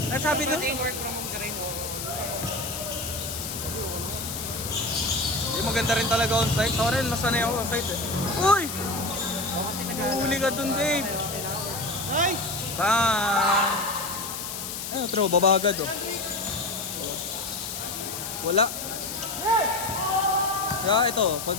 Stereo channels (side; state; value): left; noise; hiss, 6 dB below the sound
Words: Ang sabi doon, Pati work from home ka rin. yung maganda rin talaga on-site. Ako rin, masanay ako on-site eh. Uy! Huli ka dun, babe. Nice! Bang! Ano, bro, babagad oh. Wala. Kaya ito, pag